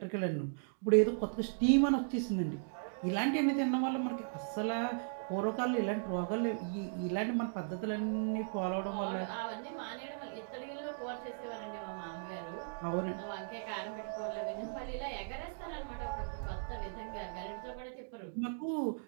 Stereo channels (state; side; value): silent; left; digital silence